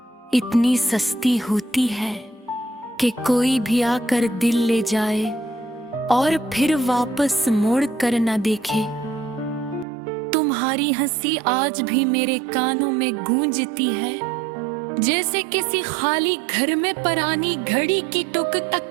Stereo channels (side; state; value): left; drops out; at 9.9 s